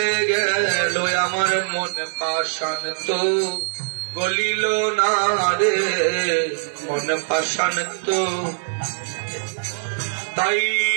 গেল আমার মনে পাষাণ তো গলিল না রে, মনে পাষাণ তো। তাই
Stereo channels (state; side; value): silent; left; 64 dB below the other